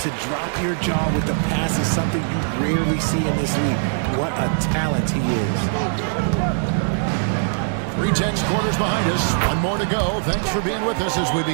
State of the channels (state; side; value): silent; left; 65 dB below the other